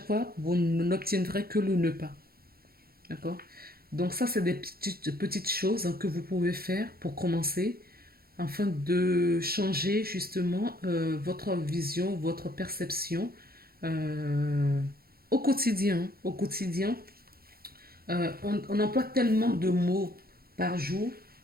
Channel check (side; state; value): left; late; 0.44 ms